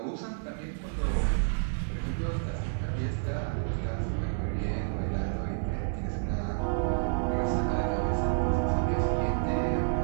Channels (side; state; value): left; silent; digital silence